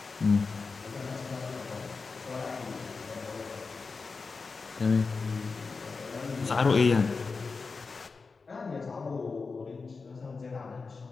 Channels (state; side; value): quieter; right; 4.5 dB